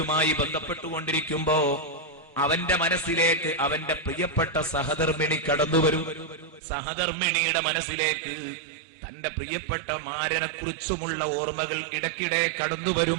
ബന്ധപ്പെട്ടുകൊണ്ടിരിക്കുമ്പോ അവന്റെ മനസ്സിലേക്ക് അവന്റെ പ്രിയപ്പെട്ട സഹധർമ്മിണി കടന്നുവരും. സഹധർമ്മിണിയുടെ മനസ്സിലേക്ക് തന്റെ പ്രിയപ്പെട്ട മാരനെ കുറിച്ചുമുള്ള ഓർമ്മകൾ ഇടയ്ക്കിടെ കടന്നു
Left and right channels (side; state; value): left; drops out; at 6.6 s